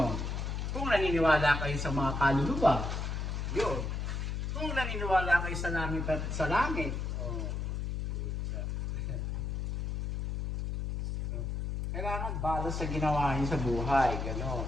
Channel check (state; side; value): noise; left; hum, 2 dB below the sound